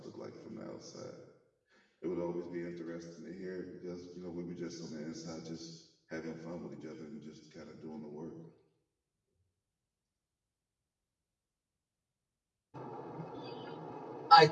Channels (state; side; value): identical; both; correlation 1.00